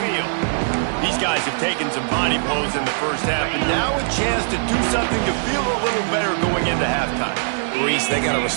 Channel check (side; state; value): left; silent; digital silence